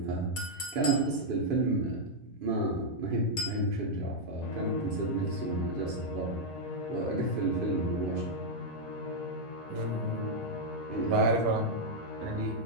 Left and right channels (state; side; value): normal; both; correlation -0.04